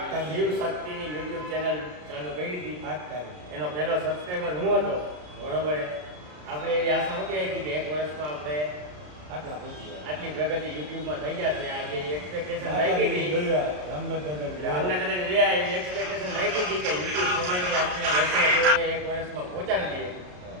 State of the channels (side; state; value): left; late; 33 ms